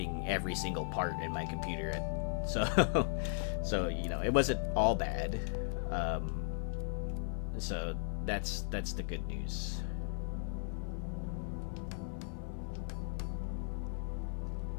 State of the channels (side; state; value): right; silent; 53 dB below the other